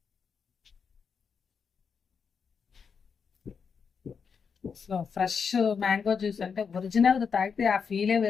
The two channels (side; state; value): right; quieter; 6.1 dB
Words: సో ఫ్రెష్ మ్యాంగో జ్యూస్ అంటే ఒరిజినల్ తాగితే ఆ ఫీలే